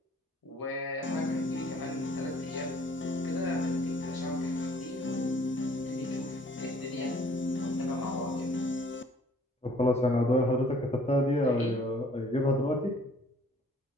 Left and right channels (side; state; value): both; normal; correlation 0.57